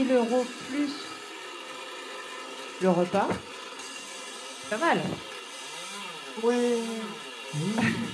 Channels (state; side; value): identical; both; correlation 1.00